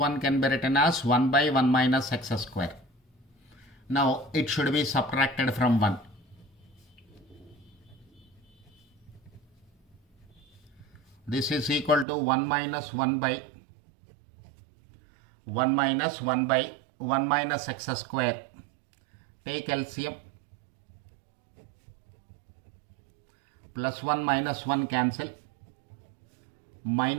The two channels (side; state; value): left; drops out; at 12.1 s